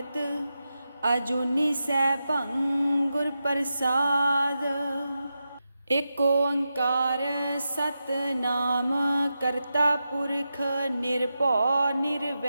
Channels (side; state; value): both; inverted; correlation -0.89